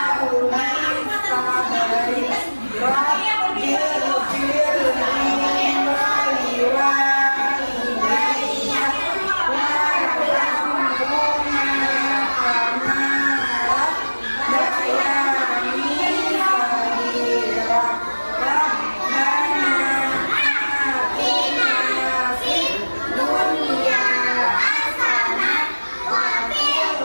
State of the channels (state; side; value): inverted; both; correlation -1.00